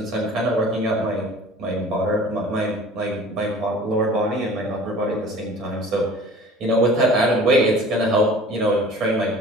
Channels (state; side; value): normal; both; correlation 0.45